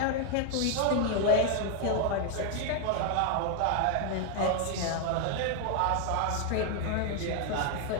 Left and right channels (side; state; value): both; different; correlation 0.00